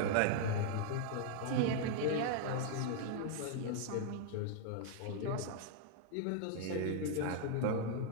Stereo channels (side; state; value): both; different; correlation -0.01